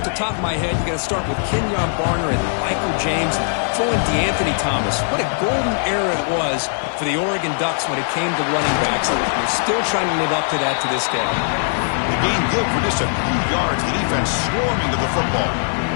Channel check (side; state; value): right; silent; 57 dB below the other